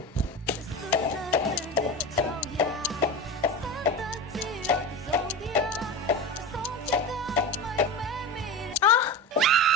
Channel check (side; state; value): both; normal; correlation 0.25